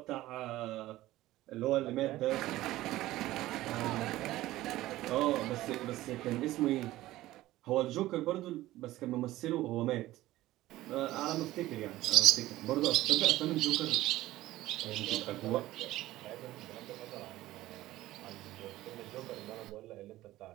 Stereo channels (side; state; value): left; quieter; 16.2 dB